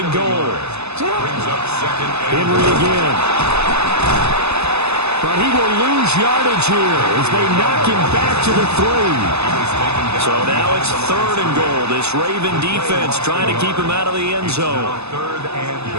goal. Henry again. But he will lose yardage here as they knock him back to the 3. So now it's 3rd and goal. This Raven defense trying to keep him out of the end zone. 3rd and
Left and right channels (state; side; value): late; left; 0.80 ms